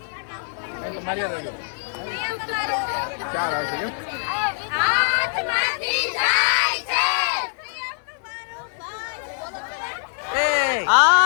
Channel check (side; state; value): right; silent; digital silence